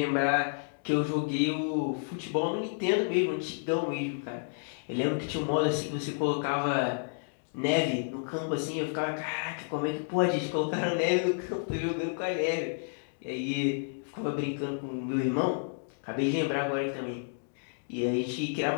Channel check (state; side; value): silent; right; digital silence